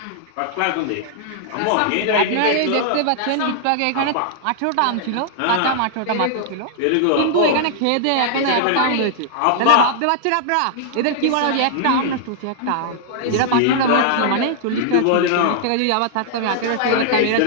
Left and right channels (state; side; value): different; both; correlation -0.01